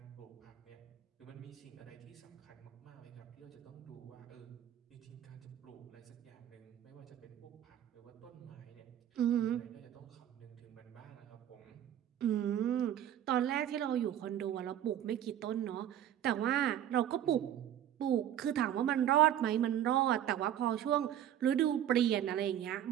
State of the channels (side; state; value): left; quieter; 11.0 dB